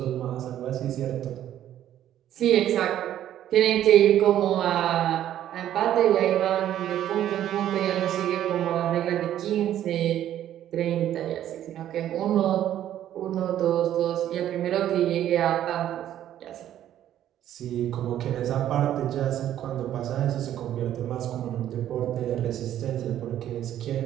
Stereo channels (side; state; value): left; quieter; 11.6 dB